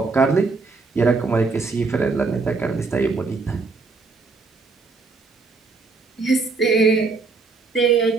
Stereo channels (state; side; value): quieter; left; 4.2 dB